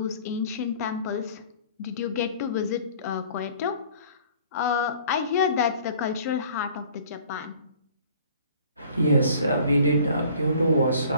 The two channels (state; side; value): inverted; both; correlation -0.51